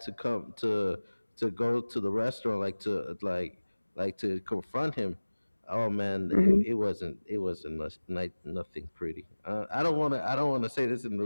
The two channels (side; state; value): both; inverted; correlation -1.00